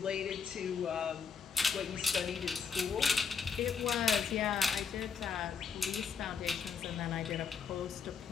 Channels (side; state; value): right; quieter; 6.0 dB